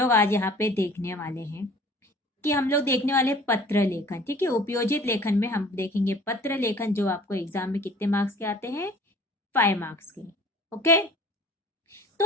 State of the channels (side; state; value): both; normal; correlation 0.49